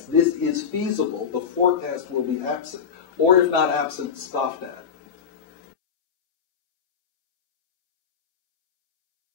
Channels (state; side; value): quieter; right; 7.0 dB